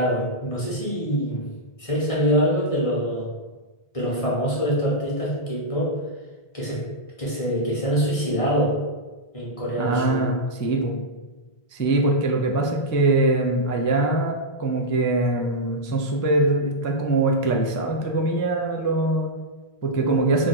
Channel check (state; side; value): late; right; 1.6 ms